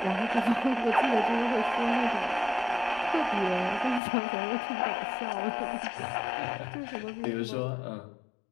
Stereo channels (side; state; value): right; drops out; at 4.0 s